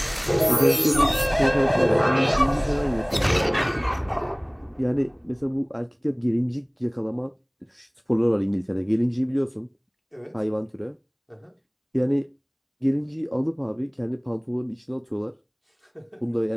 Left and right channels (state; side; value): identical; both; correlation 1.00